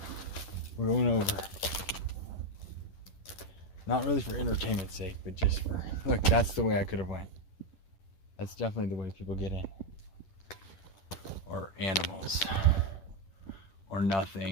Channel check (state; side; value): late; right; 10 ms